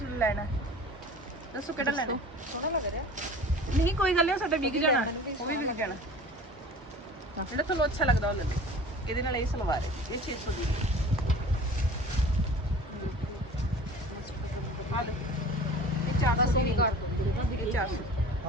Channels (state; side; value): normal; both; correlation 0.42